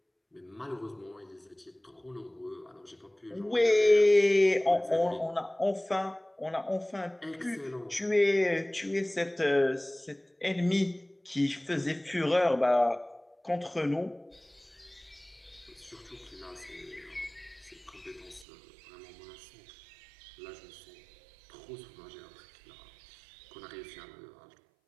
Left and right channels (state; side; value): drops out; left; at 18.4 s